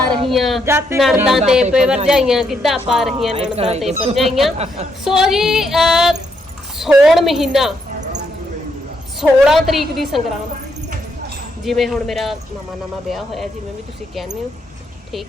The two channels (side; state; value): both; normal; correlation 0.77